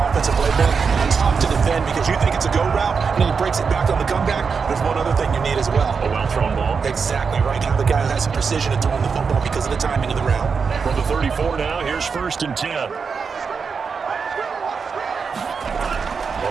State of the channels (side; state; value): left; quieter; 5.6 dB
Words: offensive playbook. It's tough to defend because you think it's a go route, and then he breaks it back on the comeback. There's one other thing you need as well. A well-thrown ball. Exactly right. Have the guy who has some precision in throwing the football because of the timing of the route. From the 34 now, here's 1st and 10.